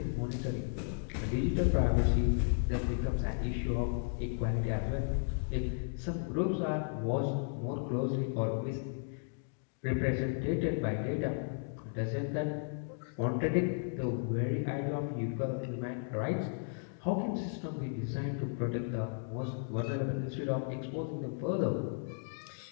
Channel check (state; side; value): silent; right; digital silence